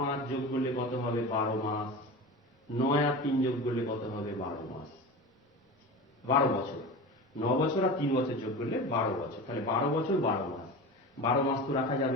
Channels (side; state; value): both; normal; correlation 0.30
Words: যোগ করলে কত হবে? 12 মাস। 9 আর 3 যোগ করলে কত হবে? 12 মাস, 12 বছর। 9 বছর আর 3 বছর যোগ করলে 12 বছর, তাহলে 12 বছর 12 মাস। 12 মাস তো রাখা